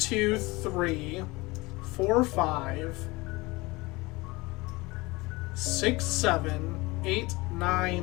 three, 4, 5, 6, 7, 8,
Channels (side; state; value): right; quieter; 22.7 dB